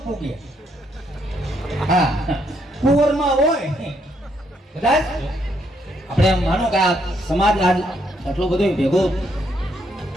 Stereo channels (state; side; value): normal; both; correlation 0.74